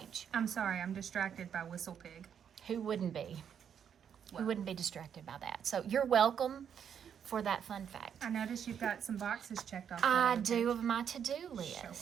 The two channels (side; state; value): left; quieter; 8.2 dB